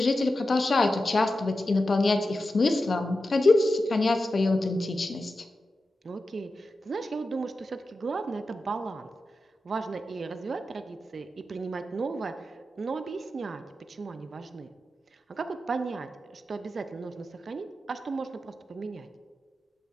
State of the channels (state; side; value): normal; both; correlation 0.91